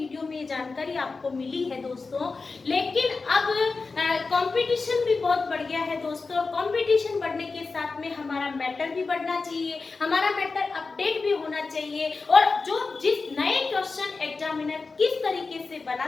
में ये जानकारी आपको मिली है दोस्तों, लेकिन अब कंपटीशन भी बहुत बढ़ गया है दोस्तों। कंपटीशन बढ़ने के साथ में हमारा मैटर भी बढ़ना चाहिए, हमारा मैटर अपडेट भी होना चाहिए, और जो जिस नए क्वेश्चन एग्जामिनर किस तरीके से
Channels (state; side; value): quieter; right; 4.2 dB